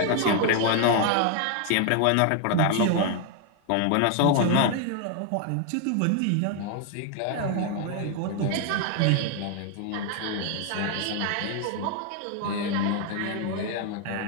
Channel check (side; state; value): both; different; correlation 0.00